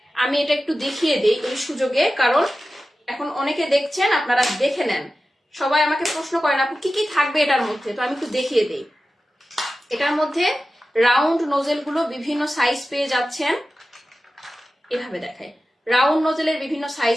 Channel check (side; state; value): both; normal; correlation 0.94